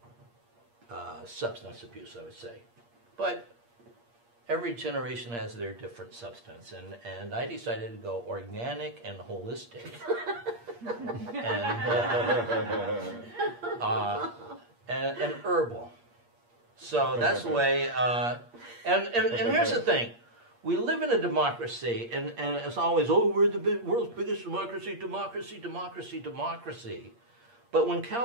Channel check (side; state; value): left; late; 8.5 ms